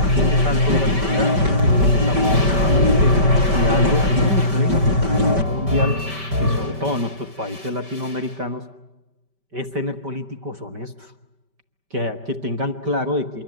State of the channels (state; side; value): late; left; 5.1 ms